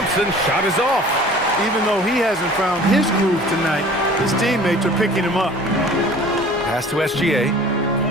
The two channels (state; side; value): normal; both; correlation 0.46